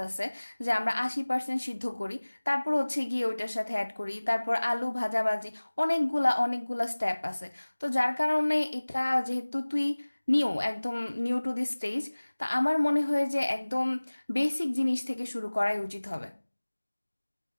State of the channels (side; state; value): both; inverted; correlation -1.00